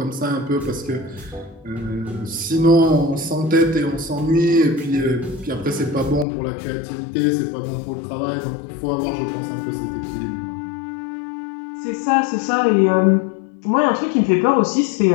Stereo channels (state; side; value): drops out; right; at 6.2 s